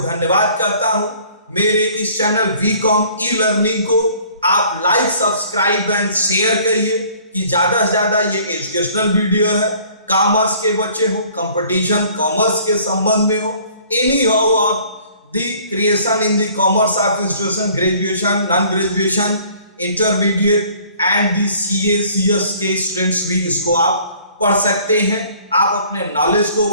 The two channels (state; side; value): inverted; both; correlation -0.54